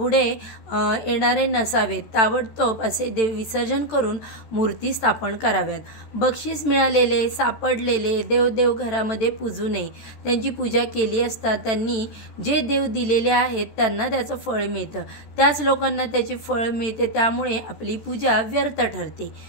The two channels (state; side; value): late; right; 13 ms